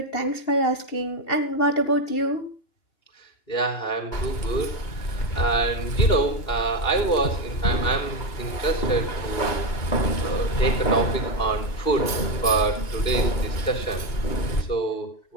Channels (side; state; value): right; late; 2.9 ms